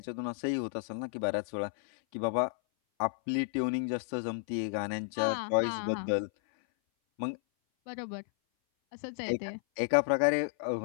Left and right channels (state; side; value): silent; right; 56 dB below the other